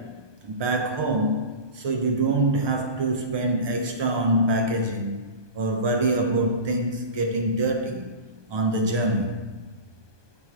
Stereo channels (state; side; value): late; left; 1.2 ms